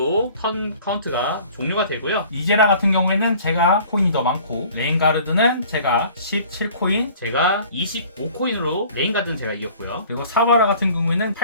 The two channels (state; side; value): inverted; both; correlation -0.49